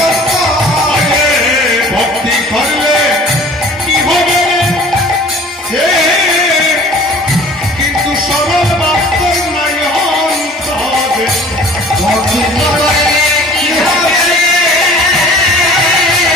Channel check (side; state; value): both; normal; correlation 0.48